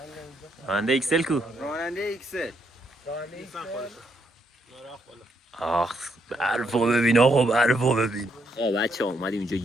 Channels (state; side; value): normal; both; correlation 0.75